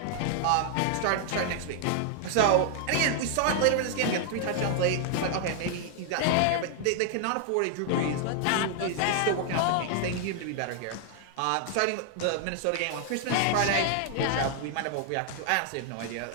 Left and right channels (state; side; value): different; both; correlation 0.00